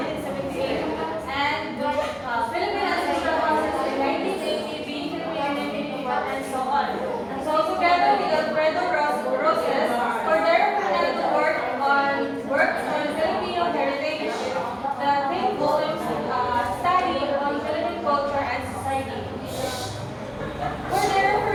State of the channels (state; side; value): identical; both; correlation 1.00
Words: and Philippine Ancestral Houses in 1980, Being Filipino, and so on. And so together with Alfredo Roses, Cordero Fernando works on Filipino heritage, the 10 volumes study on Philippine culture and society. Cordero